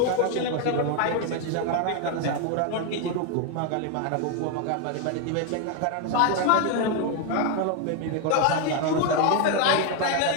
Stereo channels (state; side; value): different; both; correlation 0.01